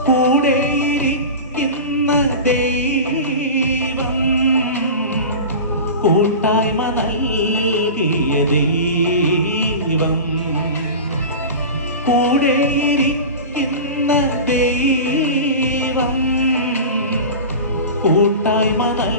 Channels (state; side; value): inverted; both; correlation -0.30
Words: കൂടെയിരിക്കുന്ന ദൈവം, കൂട്ടായ്മ നൽകിയ ദൈവം, കൂടെയിരിക്കുന്ന ദൈവം, കൂട്ടായ്മ